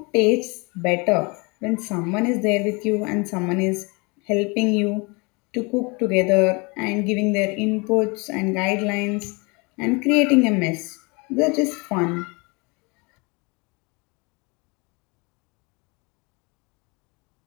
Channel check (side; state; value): right; quieter; 28.8 dB